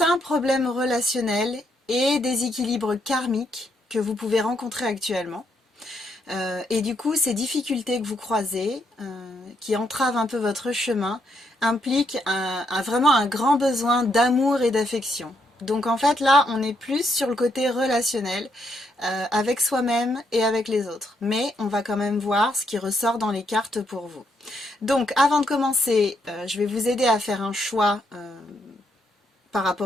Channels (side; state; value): both; normal; correlation 0.76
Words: problèmes relationnels et déséquilibres karmiques que vous pouvez rencontrer actuellement. Et du coup, ces difficultés que vous croisez, qui entravent un peu votre chemin, impliquent vraiment un grand besoin d'amour et d'affection. Donc en fait, là, on est plus sur le côté relationnel, avec soi-même et avec les autres. Mais on va quand même voir ce qui ressort dans les cartes pour vous. Donc, avant de commencer, je vais vous aider à faire un choix par